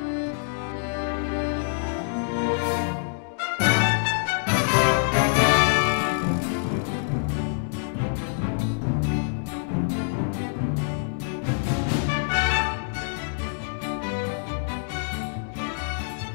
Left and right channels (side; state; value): right; silent; digital silence